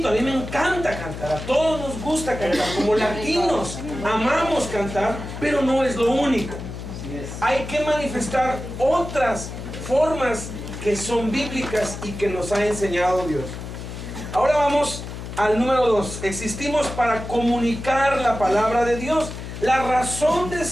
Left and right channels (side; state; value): left; noise; hum, 9 dB below the sound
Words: a mí me encanta cantar, a todos nos gusta cantar, como latinos amamos cantar, pero no es lo único. Hay que manifestar otras formas que son bíblicas y que nos ha enseñado Dios. Ahora vamos al número 2. Existimos para comunicar la palabra de Dios. La razón de